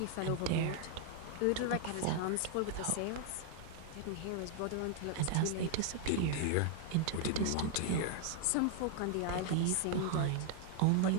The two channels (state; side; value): different; both; correlation 0.00